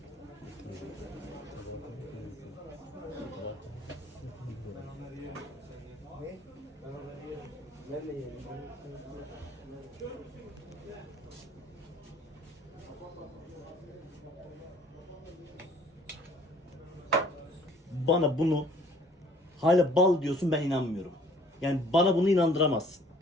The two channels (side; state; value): both; normal; correlation 0.55